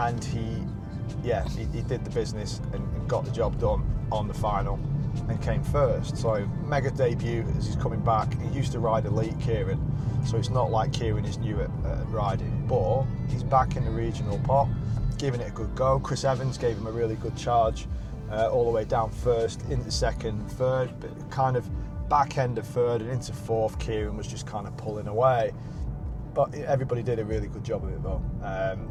he did the business and got the job done on the final and came first. So mega debut as he's coming back. He used to ride elite, Kieron, so it's not like Kieron is new at riding, but he's back in the regional pot, giving it a good go. Chris Evans gave him a really good charge all the way down first, into second, third, but kind of back end of third and into fourth. Kieron was just kind of pulling away, but everybody did a really good job of it though.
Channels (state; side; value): identical; both; correlation 1.00